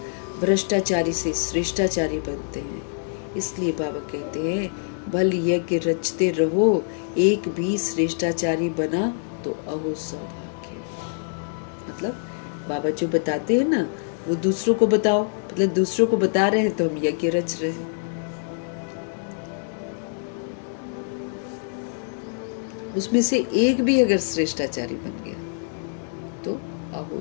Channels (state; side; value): silent; right; digital silence